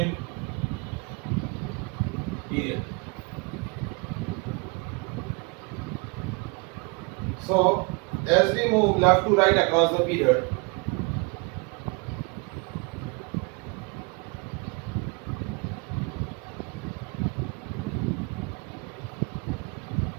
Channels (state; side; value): quieter; left; 31.0 dB